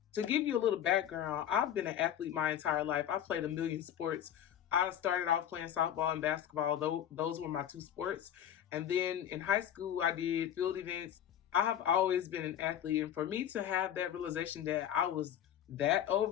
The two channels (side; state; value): right; quieter; 10.2 dB